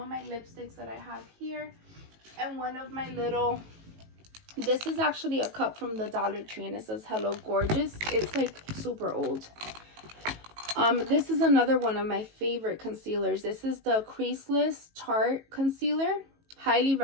my lipsticks that I have here. And one of my little, this is actually a cup from the Dollar Tree and it says Hello Gorgeous. It's like super old. This is another one of my favorite concealers. This is the Creaseless Tarte Concealer. Highly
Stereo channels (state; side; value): late; left; 18 ms